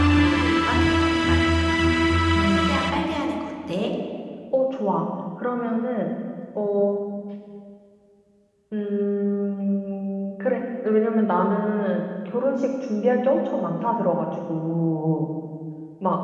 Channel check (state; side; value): identical; both; correlation 1.00